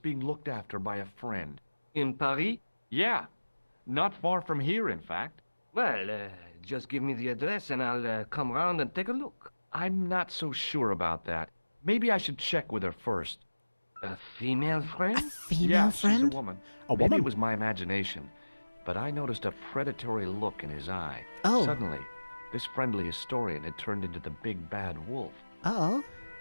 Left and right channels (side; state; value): both; inverted; correlation -1.00